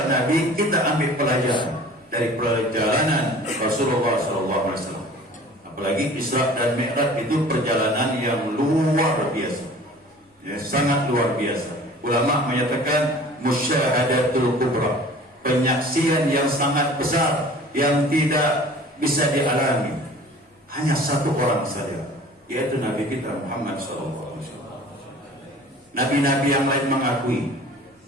Nabi, kita ambil pelajaran dari perjalanan Rasulullah SAW. Apalagi Isra dan Mi'raj itu perjalanan yang luar biasa, ya, sangat luar biasa. Ulama menyatakan musyahadatul kubra, penyaksian yang sangat besar yang tidak bisa dialami hanya satu orang saja, yaitu Nabi kita Muhammad SAW. Nabi-nabi yang lain mengakui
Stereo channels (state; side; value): normal; both; correlation 0.45